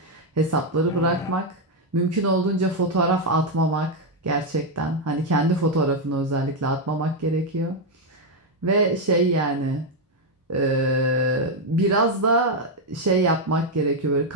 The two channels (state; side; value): normal; both; correlation 0.03